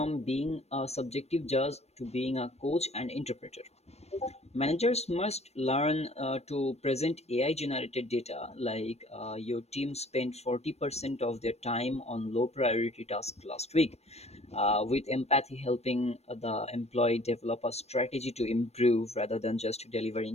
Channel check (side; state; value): right; late; 0.31 ms